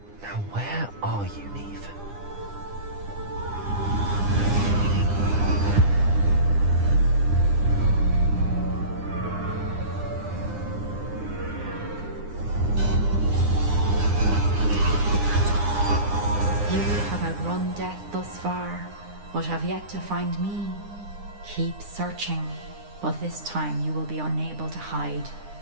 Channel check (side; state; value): left; late; 9.9 ms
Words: Now where are you, Neve? You have outrun death thus far, but have yet to find me. Keep searching, but this time you will be unable to hide.